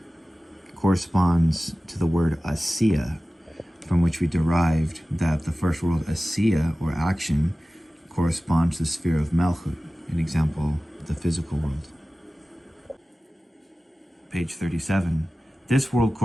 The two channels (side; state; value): both; normal; correlation 0.96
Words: corresponds to the word Assiah, from which we derived that the first world, Assiah, or action, corresponds to the sphere of Malchut, an example, the physical world. Page 37. This world